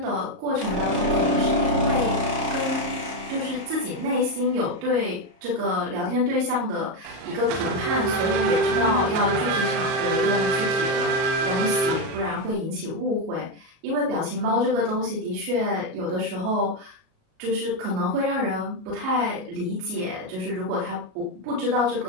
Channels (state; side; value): late; left; 38 ms